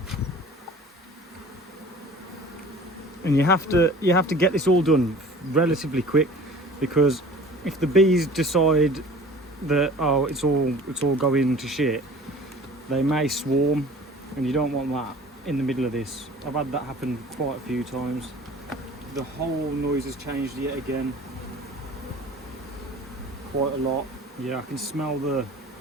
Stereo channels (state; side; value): normal; both; correlation 0.45